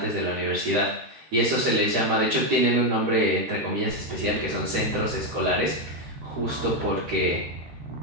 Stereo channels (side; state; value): left; late; 13 ms